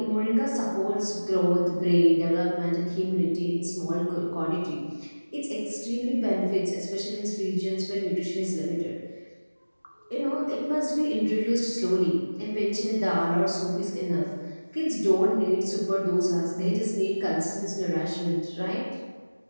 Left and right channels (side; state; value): both; inverted; correlation -1.00